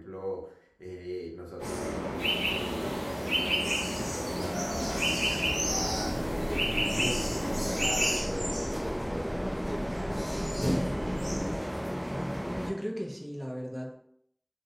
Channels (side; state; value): both; identical; correlation 1.00